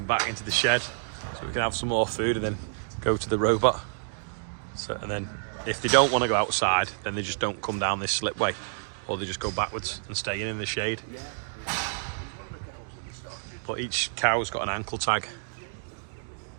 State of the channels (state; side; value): silent; left; digital silence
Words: back into the shed, so we can have some more food and then go to the robot. So, and then if they don't want to go outside, then they just don't come down this slipway, or they just go backwards and stay in the shade. But each cow's got an ankle tag